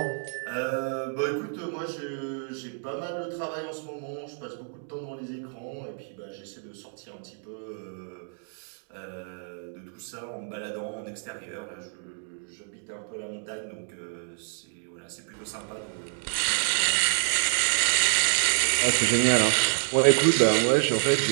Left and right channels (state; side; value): silent; left; 59 dB below the other